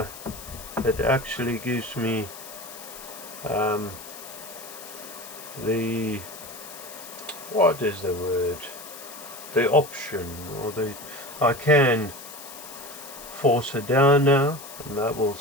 actually gives me the, what is the word? The option, or I can force it down now, and that will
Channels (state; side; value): noise; left; hiss, 14 dB below the sound